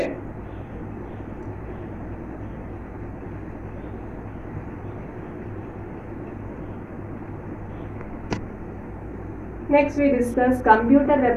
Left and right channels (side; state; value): both; identical; correlation 1.00